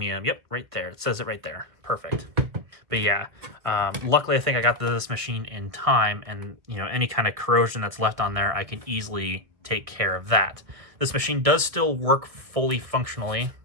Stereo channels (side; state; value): left; late; 1.6 ms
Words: Yep, right there. It says it right there. Perfect. But yeah, luckily I think I got this machine in time, and you know, any kind of corrosion that's left on there, I can easily take care of that. This machine does still work fully functionally,